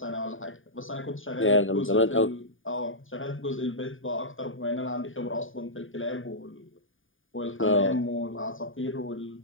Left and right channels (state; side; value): late; right; 0.58 ms